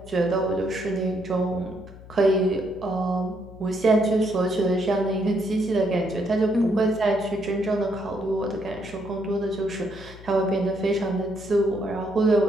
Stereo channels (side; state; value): left; noise; hum, 18 dB below the sound